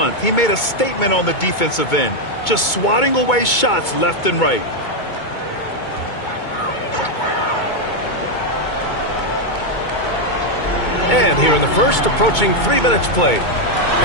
he made a statement on the defensive end, just swatting away shots left and right. And here in the first, approaching 3 minutes played.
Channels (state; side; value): late; right; 2.2 ms